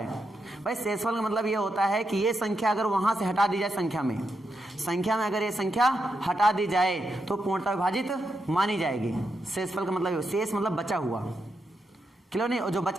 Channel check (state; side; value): normal; both; correlation 0.84